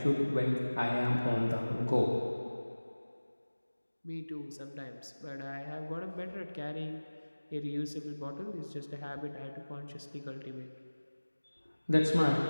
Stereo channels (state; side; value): inverted; both; correlation -1.00